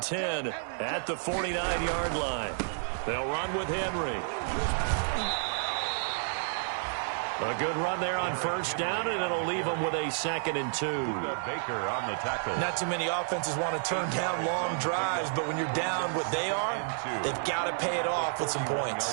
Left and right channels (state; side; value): silent; left; digital silence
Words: 10 at the 49-yard line. They'll run with Henry. A good run there on 1st down, and it'll leave them with a 2nd and 2. Baker on the tackle. Not too many offenses want to turn down long drives, but when you're down what they are, they've got to pay it off with some